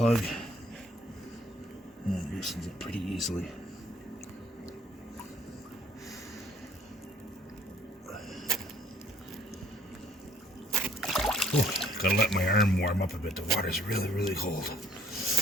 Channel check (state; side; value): normal; both; correlation 0.60